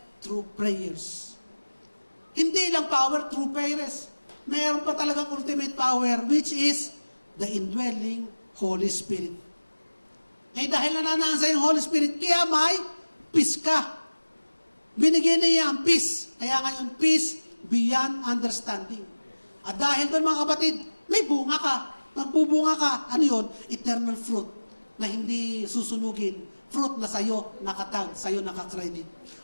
through prayers. Hindi lang power through prayers. Meron pa talagang ultimate power, which is the indwelling Holy Spirit. Eh dahil nananasa yung Holy Spirit, kaya may peace ka. Binigyan niya ang peace. Kaya nga yung peace beyond understanding. At dahil doon mga kapatid, may bunga ka. Magbubunga ka, ano yun? Eternal fruit na hindi susunugin. Fruit na sa'yo nakatag, sa'yo nakakredit.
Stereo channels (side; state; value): both; inverted; correlation -1.00